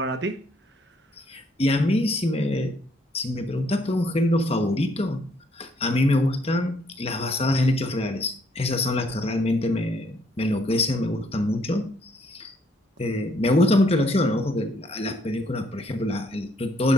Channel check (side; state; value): both; normal; correlation 0.68